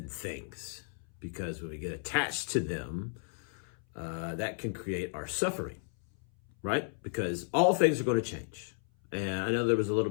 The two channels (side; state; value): right; silent; 55 dB below the other